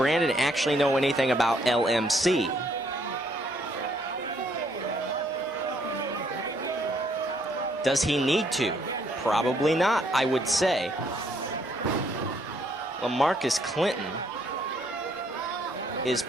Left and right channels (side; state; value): both; normal; correlation 0.68